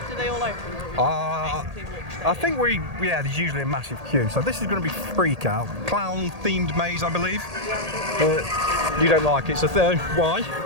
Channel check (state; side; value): late; left; 1.8 ms